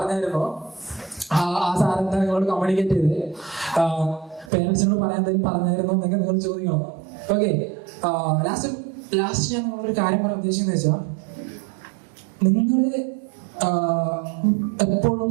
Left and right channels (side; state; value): left; drops out; at 4.5 s